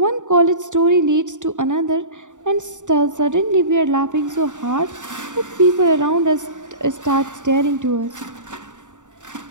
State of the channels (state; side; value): late; left; 0.86 ms